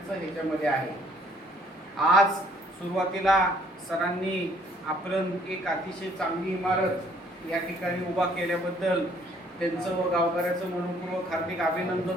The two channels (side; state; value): both; normal; correlation 0.62